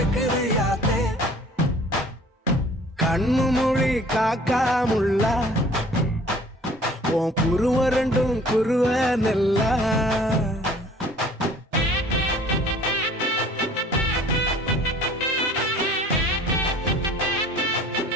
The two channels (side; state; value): both; normal; correlation 0.52